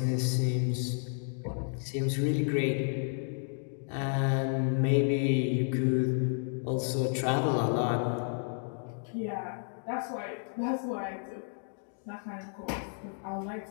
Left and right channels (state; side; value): silent; right; 57 dB below the other